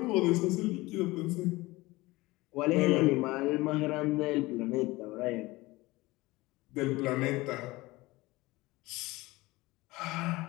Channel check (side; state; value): right; quieter; 20.7 dB